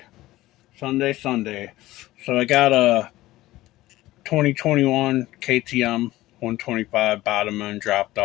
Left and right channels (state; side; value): quieter; right; 16.9 dB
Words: So I got a 2021 KTM 125 bottom end dropped